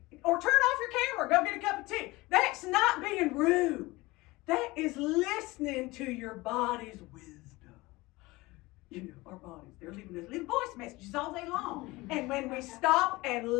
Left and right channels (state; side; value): quieter; right; 21.3 dB